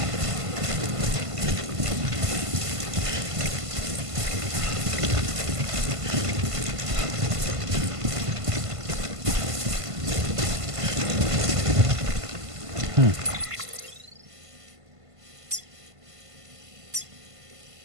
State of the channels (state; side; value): late; left; 1.5 ms